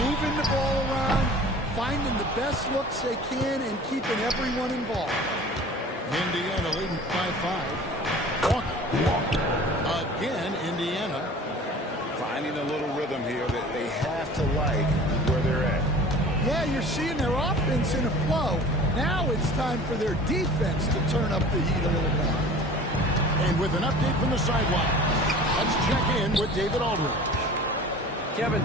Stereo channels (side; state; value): both; normal; correlation 0.43